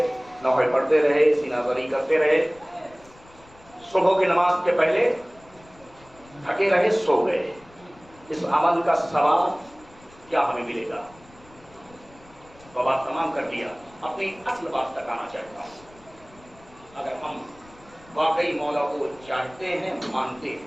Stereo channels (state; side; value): noise; left; rumble, 25 dB below the sound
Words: نوحے پڑھتے رہے, سینہ بری کرتے رہے, صبح کی نماز کے پہلے تھکے رہے, سو گئے. اس عمل کا ثواب کیا ہمیں ملے گا؟ وہ بات تمام کر دیا. اپنی اصل بات تک آنا چاہتا ہوں. اگر ہم واقعی مولا کو چاہتے ہیں, مانتے